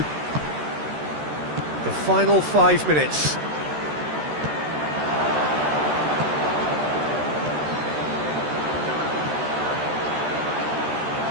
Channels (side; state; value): left; late; 13 ms